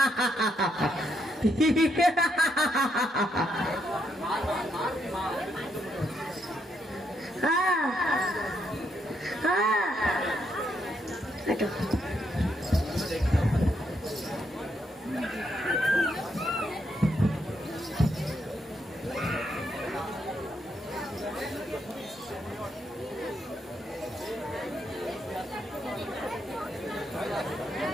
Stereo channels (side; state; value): both; normal; correlation 0.77